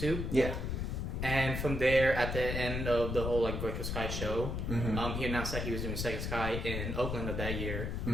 Yeah. And from there, at the end of the whole like Virtual Sky show, Mm-hmm. he announced that he was doing Second Sky in Oakland of that year,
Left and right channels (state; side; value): noise; left; rumble, 2 dB below the sound